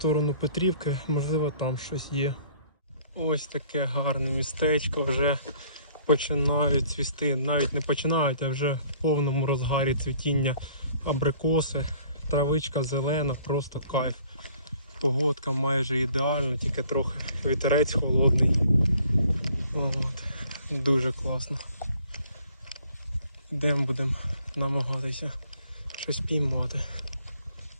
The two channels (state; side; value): inverted; both; correlation -0.58